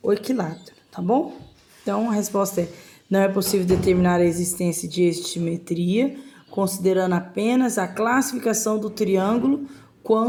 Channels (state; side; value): identical; both; correlation 1.00